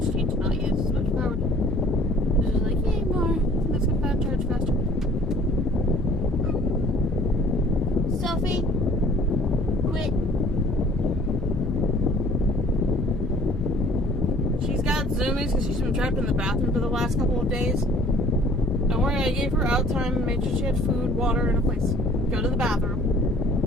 need to not use as much power. This is like, yay, more. Let's get that charge faster. Sophie, quit. She's got zoomies because she's been trapped in the bathroom for the last couple of days. Don't worry, I gave her out time and made sure she had food, water, and a place. Go to the bathroom.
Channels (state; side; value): normal; both; correlation 0.53